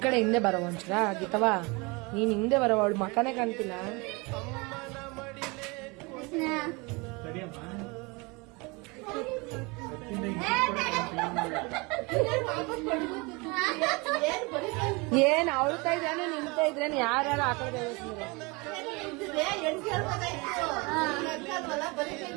ಕಡೆ ಹಿಂದೆ ಬರವ ಒಂಚೂರ ಗೀತವಾ, ನೀನ್ ಹಿಂದೆ ಬರವ, ಅವಳು ಮಕನೇ ಕಾಣ್ತಿಲ್ಲ. ಏನ್ ಅವಳ್ತಾ ಇದ್ರೇನು ನಿಂತಾ ಇದ್ರೇನು ಯಾರು ಆ ಕಡೆ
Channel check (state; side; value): quieter; left; 27.2 dB